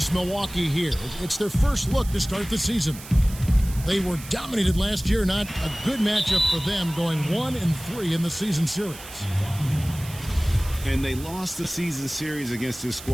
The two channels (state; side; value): noise; right; hiss, 15 dB below the sound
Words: Milwaukee here. It's their first look to start the season. They were dominated last year. Not a good matchup for them, going 1-3 in the season series. And they lost the season series against this